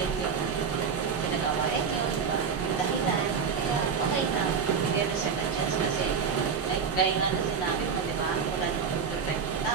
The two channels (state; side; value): quieter; left; 6.2 dB